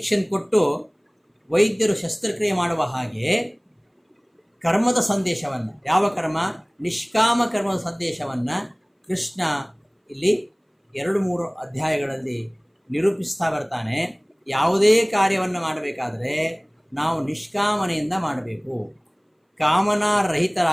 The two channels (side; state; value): both; identical; correlation 1.00